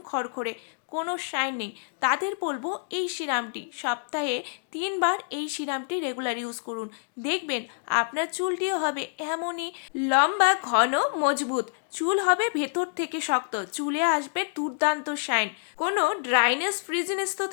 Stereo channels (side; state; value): right; silent; digital silence